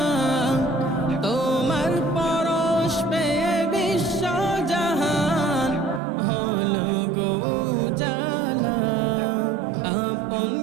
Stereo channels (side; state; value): left; drops out; at 6.0 s